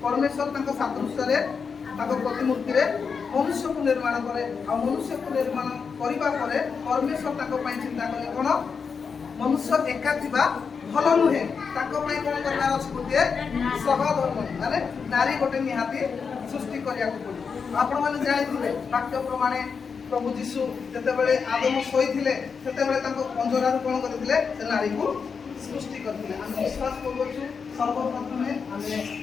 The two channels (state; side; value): quieter; right; 5.8 dB